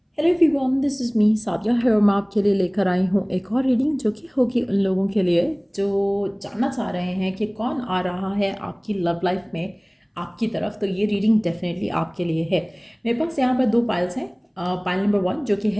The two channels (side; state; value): both; identical; correlation 1.00